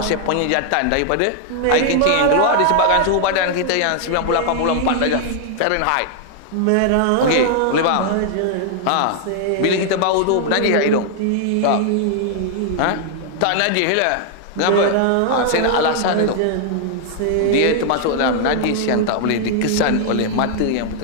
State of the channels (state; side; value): different; both; correlation 0.00